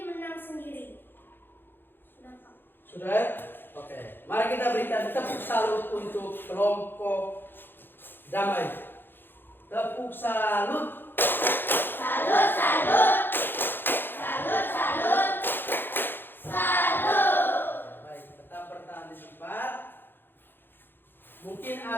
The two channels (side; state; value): right; late; 0.099 ms